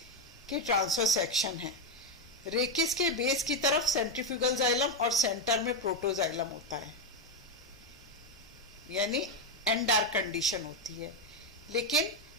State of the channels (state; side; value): normal; both; correlation 0.06